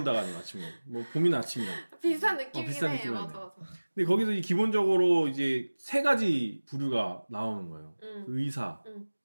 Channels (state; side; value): inverted; both; correlation -1.00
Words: 아니고 아침이 온다. 뭐 봄이나 아침이나. 비슷한 느낌이긴 비슷한 해. 느낌이네. 맞아. 근데 거기서 기본적으로 이제 세 가지 부류가 나오는 거예요. 의사,